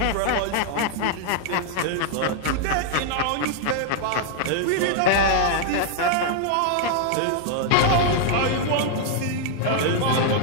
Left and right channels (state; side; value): different; both; correlation -0.01